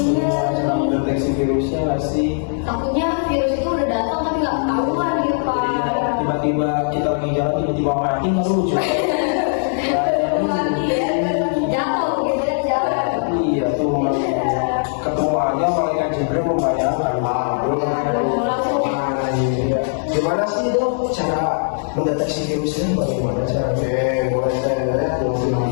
iya. Sedang deteksi virusnya nggak sih? Takutnya virus itu udah datang tapi nggak ketahuan gitu Pak. Iya, tiba-tiba kita lagi jalan tiba-tiba mati nggak lucu. Mati ya, jatuh gitu ya jalan. Iya tuh, ketemu aja malaikat Jibril membayangkan. Iya. Gimana sih dok cara mendeteksi virusnya? Bagaimana caranya? Mulai saya lihat fungsi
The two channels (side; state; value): right; silent; 64 dB below the other